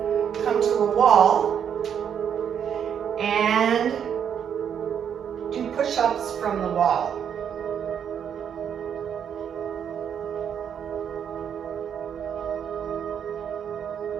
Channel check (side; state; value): left; quieter; 8.2 dB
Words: Come to a wall and do push-ups from the wall.